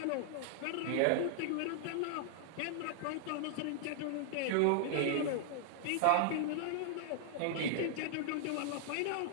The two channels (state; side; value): different; both; correlation -0.01